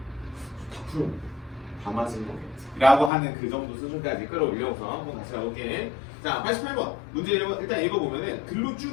다 풀어. 다 맞은 거겠지. 라고 하는 그 정도 수준까지 끌어올려서 한번 다시 가볼게. 자, 88번 문제 일단 읽어보면은 글로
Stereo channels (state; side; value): drops out; right; at 3.1 s